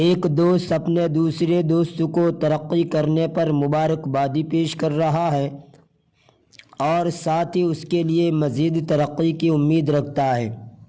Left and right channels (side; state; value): both; identical; correlation 1.00